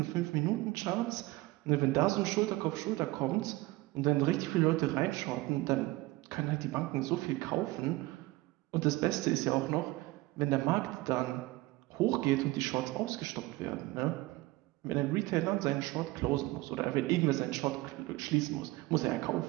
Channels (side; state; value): left; quieter; 20.0 dB